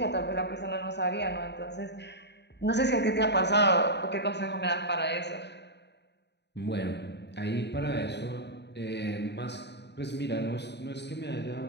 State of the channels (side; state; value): right; late; 0.50 ms